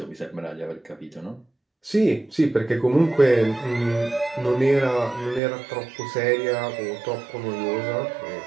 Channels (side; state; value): left; drops out; at 5.4 s